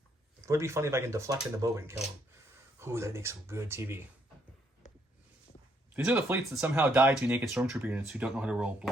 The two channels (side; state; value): both; normal; correlation 0.71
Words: would be funny if I can deflect into Boba and kill him. Ooh, that'd make some good TV. These are the fleets that somehow die to naked stormtrooper units who don't know how to roll